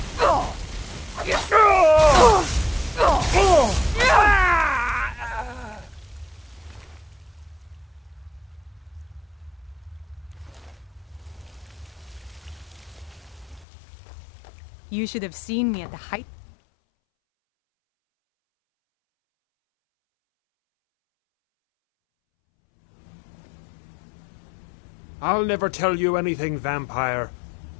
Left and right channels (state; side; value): drops out; right; at 13.7 s